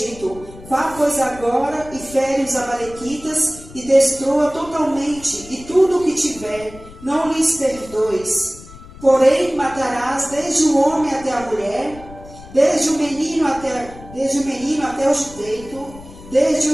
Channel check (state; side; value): noise; left; rumble, 18 dB below the sound